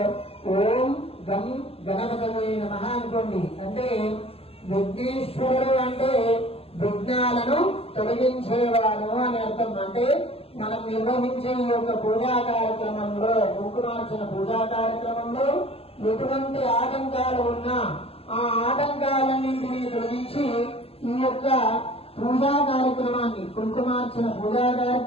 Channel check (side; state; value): right; late; 0.28 ms